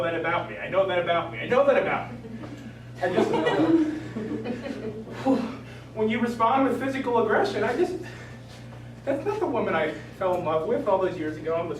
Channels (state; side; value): identical; both; correlation 1.00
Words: that about me. I know that about me. I know that about me. I just, when you respond with physical aggression, that's not the woman I fell in love with all those years ago on the